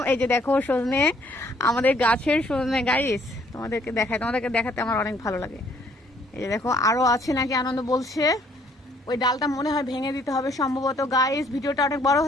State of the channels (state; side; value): normal; both; correlation 0.63